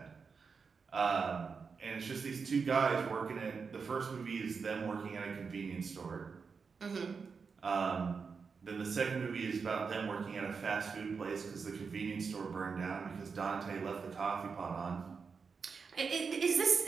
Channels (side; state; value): left; quieter; 5.4 dB